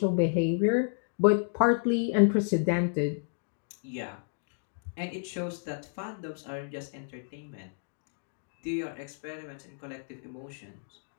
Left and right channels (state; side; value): silent; right; digital silence